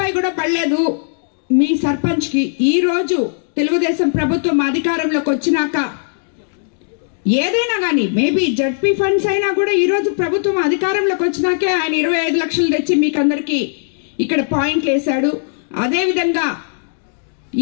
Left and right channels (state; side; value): silent; right; digital silence